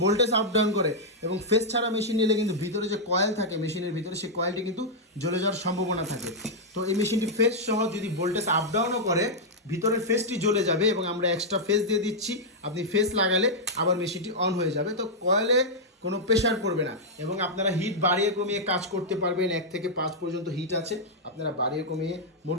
ভোল্টেজ আপ ডাউন করে এবং ফেস ছাড়া মেশিন নিলে কিন্তু ভিতরে যে কয়েল থাকে মেশিনের ভিতরে, সেই কয়েলটি কিন্তু জ্বলে যাওয়ার সম্ভাবনা থাকে। তো এই মেশিনটি ফেস সহ যদি ভোল্টেজ আপ ডাউনও করে ভিতরের ফেসটি জ্বলে যাবে এবং আমরা এক্সট্রা ফেস দিয়ে দিচ্ছি। আপনি ফেস লাগালে আবার মেশিনটি অন হয়ে যাবে। তো কয়েলে কোনো প্রেশার পড়বে না এবং আপনারা হিট বাড়িয়ে কমিয়ে কাজ করতে পারবেন। 1 থেকে 5 পর্যন্ত হিট আছে, আপনারা বাড়িয়ে কমিয়ে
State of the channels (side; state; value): both; normal; correlation -0.05